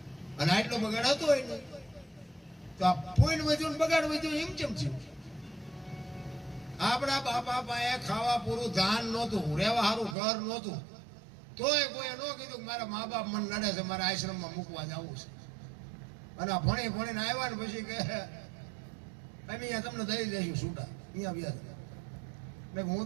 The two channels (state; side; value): drops out; left; at 10.2 s